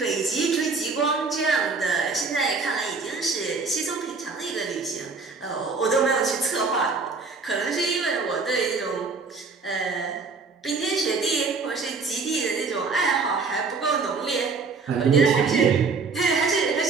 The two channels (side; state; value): left; quieter; 4.5 dB